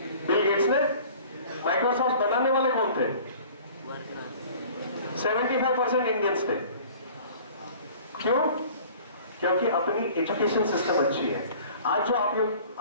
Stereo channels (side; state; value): both; inverted; correlation -0.47